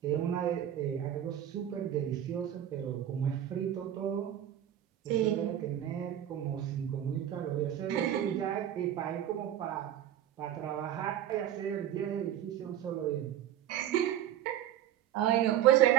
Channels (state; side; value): quieter; left; 11.1 dB